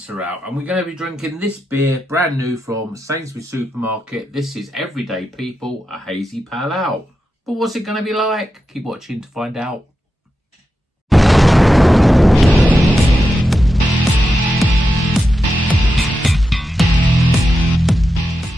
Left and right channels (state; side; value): normal; both; correlation 0.88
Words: out and we're going to be drinking this beer, brand new from Sainsbury supermarket. This is Everyday People, a Hazy Pale Ale. But what's it going to be like? Keep watching to find out.